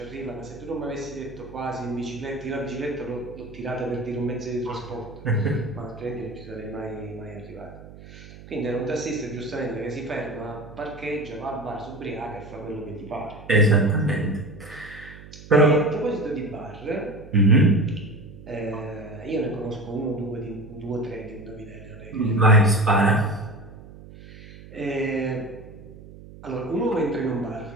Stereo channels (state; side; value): noise; right; hum, 17 dB below the sound